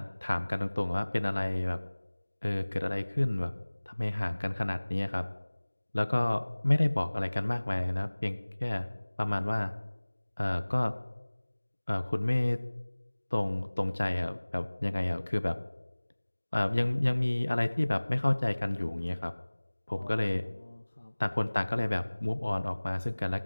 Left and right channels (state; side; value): inverted; both; correlation -1.00